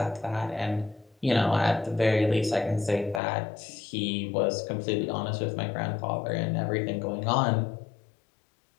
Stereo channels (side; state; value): right; drops out; at 3.2 s